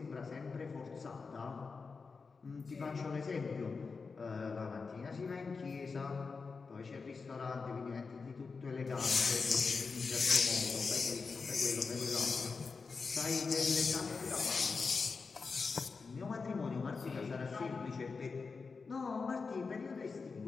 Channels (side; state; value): right; quieter; 4.7 dB